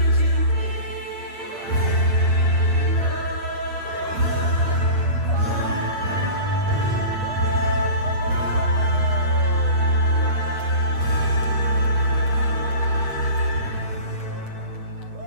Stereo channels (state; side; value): late; left; 8.7 ms